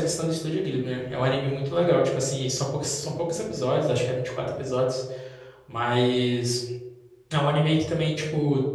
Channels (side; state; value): both; identical; correlation 1.00